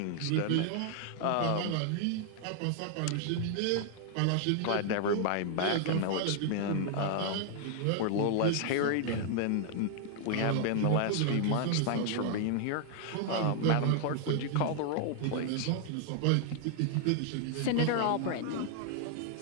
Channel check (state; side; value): different; both; correlation 0.00